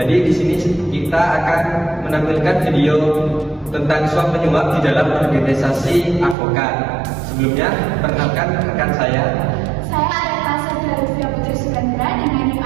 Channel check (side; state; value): left; drops out; at 6.4 s